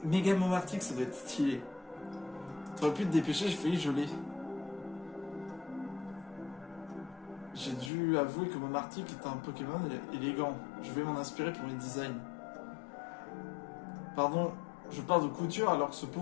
Méga Momartic, ça doit être stylé. T'aurais pu te dépêcher, j'ai failli geler. J'ai dû avouer que Momartic était un Pokémon élégant. Je vais m'en inspirer pour mes designs. Pardon, je parle de couture alors que ce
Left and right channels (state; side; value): drops out; right; at 7.9 s